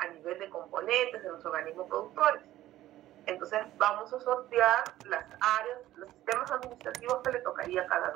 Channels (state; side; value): quieter; left; 14.4 dB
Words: nivel de componentes de los organismos productores. Entonces vamos a sortear las áreas, los sistemas administrativos que le tocaría a cada